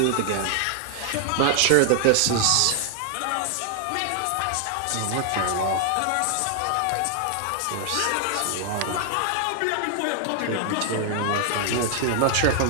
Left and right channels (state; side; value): different; both; correlation 0.00